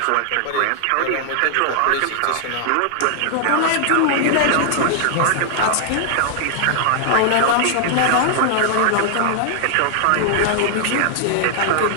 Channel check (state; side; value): different; both; correlation 0.00